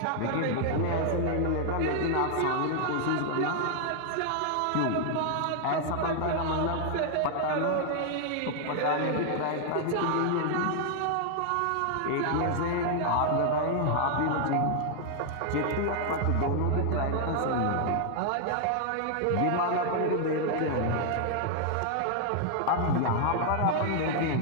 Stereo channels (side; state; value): both; different; correlation 0.00